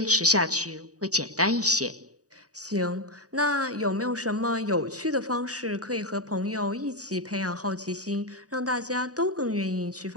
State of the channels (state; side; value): late; left; 0.67 ms